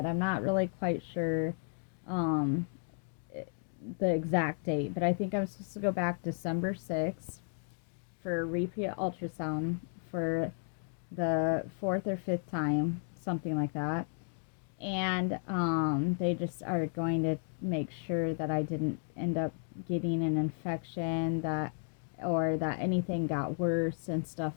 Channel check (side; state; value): right; silent; 55 dB below the other